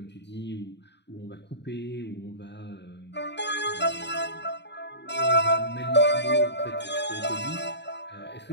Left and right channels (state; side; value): late; right; 0.50 ms